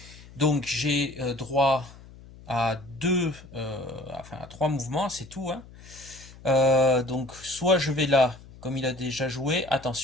Donc j'ai droit à enfin à 3 mouvements, c'est tout, hein. Donc soit je vais là, comme il a déjà joué,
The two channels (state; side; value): noise; left; hum, 20 dB below the sound